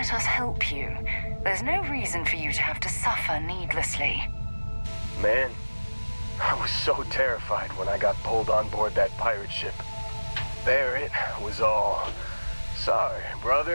us help you. There's no reason for you to have to suffer needlessly. Man, I was so terrified when I got pulled on board that pirate ship. There it was all. Sorry,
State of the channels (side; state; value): both; inverted; correlation -1.00